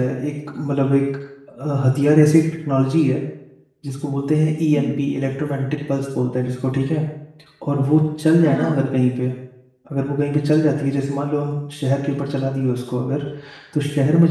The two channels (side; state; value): both; identical; correlation 1.00